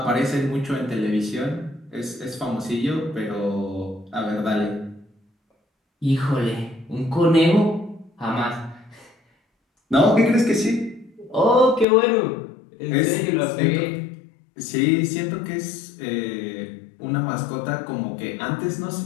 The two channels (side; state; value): right; drops out; at 11.9 s